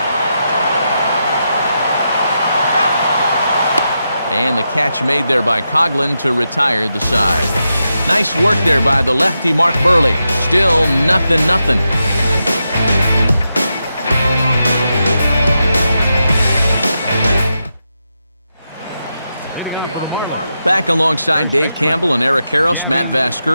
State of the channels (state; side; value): inverted; both; correlation -0.87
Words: And the catch made there by Coughlin to retire the side. Nice work there by the lefty Mark Burley. Still 0-0. Back alongside Dave Campbell and Eric Karros, Matt